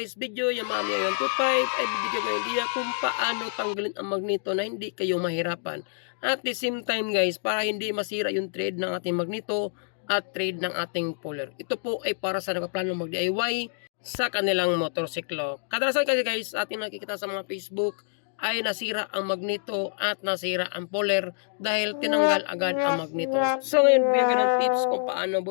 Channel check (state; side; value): silent; right; digital silence